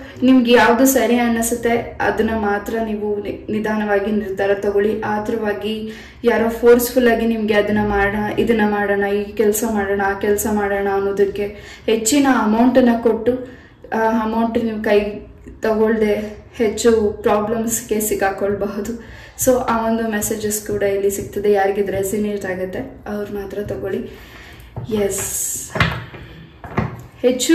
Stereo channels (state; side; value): identical; both; correlation 1.00